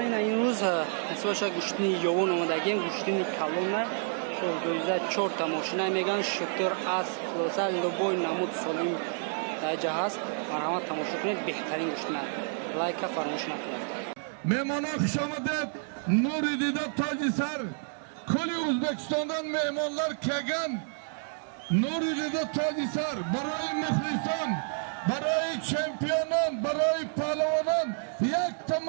ин рӯз ҳисоша гӯштини ёвон омадагем, гӯштини калона 2004 тамошина меган шутер аст хулоса лубой намуд солим даҷа ҳаст. марҳамат тамошо кунед, беҳтарин гӯштина. лайка фаромӯш накунед. Мehmonlar xush omadib, Nuri Dida toji sar. Kuli O'zbekistondan mehmonlar kelgan. Nuri Dida toji sar. Baroy muxlison, baroy chempionon, baroy pahlovonon, yakta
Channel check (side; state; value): left; silent; 58 dB below the other